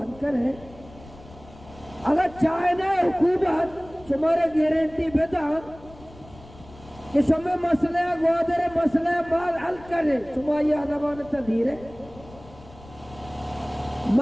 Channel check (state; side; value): noise; left; rumble, 21 dB below the sound